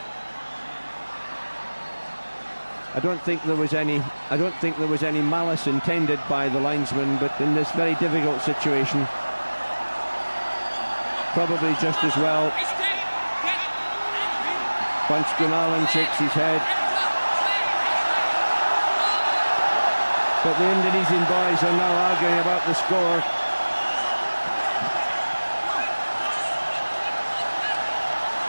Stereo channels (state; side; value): inverted; both; correlation -1.00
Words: I don't think there was any malice intended by the linesman, but in this very difficult situation, probably just as well. Punch Gunawan shakes his head. But the Indonesian boys are now arguing about the score.